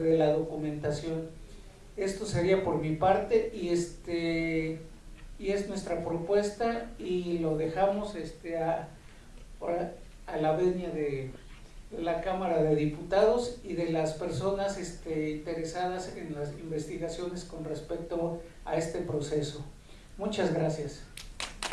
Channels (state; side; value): identical; both; correlation 1.00